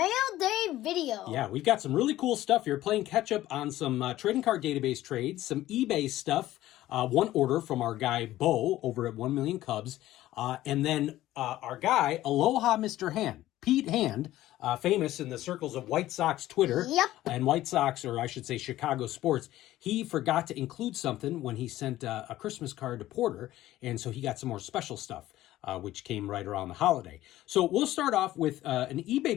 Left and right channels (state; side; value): quieter; right; 15.0 dB